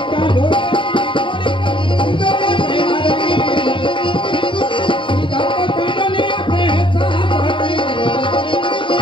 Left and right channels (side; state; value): right; late; 0.24 ms